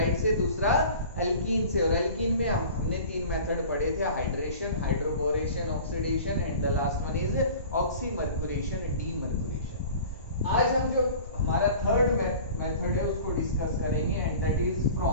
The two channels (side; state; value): both; inverted; correlation -0.42